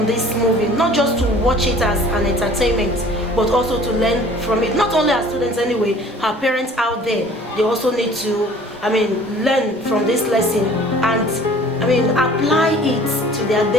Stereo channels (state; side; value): normal; both; correlation 0.50